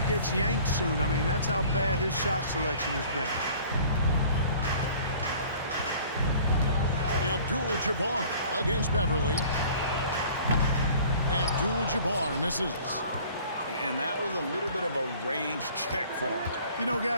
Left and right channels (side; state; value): both; inverted; correlation -0.50